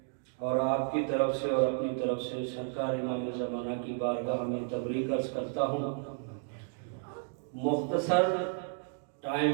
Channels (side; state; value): left; silent; 56 dB below the other